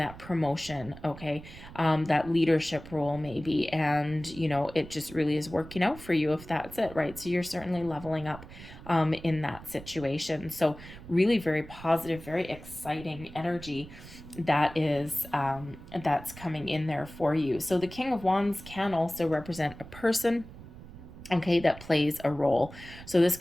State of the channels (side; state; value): right; noise; rumble, 16 dB below the sound